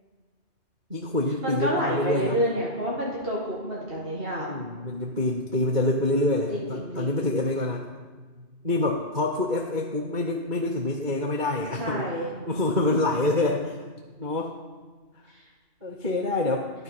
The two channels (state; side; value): late; left; 2.3 ms